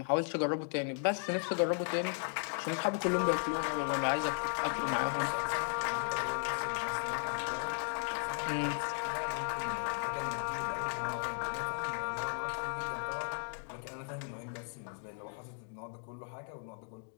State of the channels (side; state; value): right; silent; 54 dB below the other